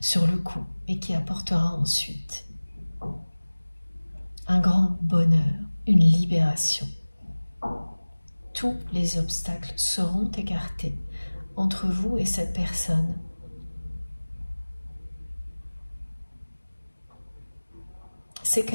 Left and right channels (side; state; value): both; inverted; correlation -1.00